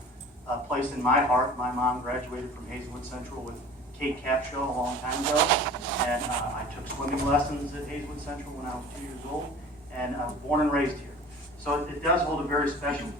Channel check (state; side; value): normal; both; correlation 0.43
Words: place in my heart. My mom graduated from Hazelwood Central with Kate Capshaw a long time ago, and I took swimming lessons at Hazelwood Central when I was 2 years old, and I was born and raised here. So it does hold a very special